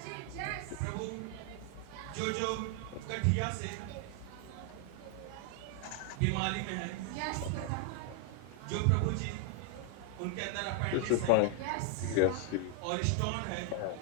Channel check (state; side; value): different; both; correlation 0.00